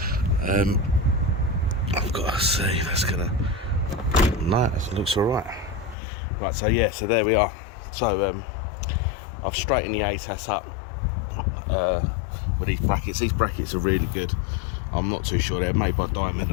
I've got to see. That's gonna. No, it looks all right. Right. So yeah. So there we are. So I've straightened the ATAS up with these brackets. These brackets are really good. I'm not too sure, they're made by Diamond.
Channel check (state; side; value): drops out; right; at 6.0 s